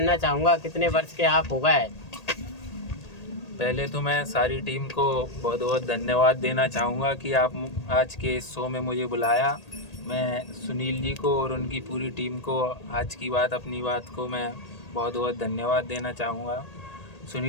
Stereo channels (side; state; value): right; late; 1.8 ms